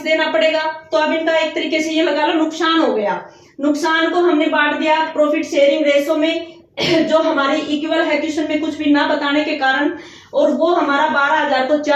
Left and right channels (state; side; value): identical; both; correlation 1.00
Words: देना पड़ेगा। तो अब इनका एक तरीके से ये लगा लो नुकसान हो गया। नुकसान को हमने बांट दिया प्रॉफिट शेयरिंग रेशो में, जो हमारी इक्वल है क्वेश्चन में कुछ भी ना बताने के कारण, और वो हमारा 12,000 को